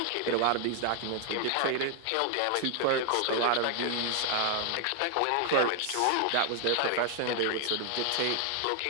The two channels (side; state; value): both; different; correlation 0.00